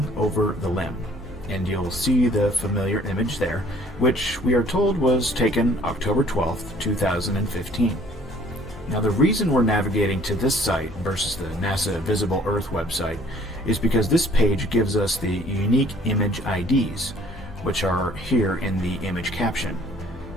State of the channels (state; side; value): normal; both; correlation 0.57